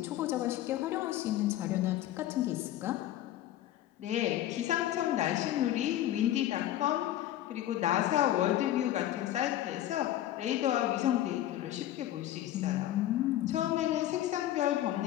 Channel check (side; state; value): right; quieter; 13.3 dB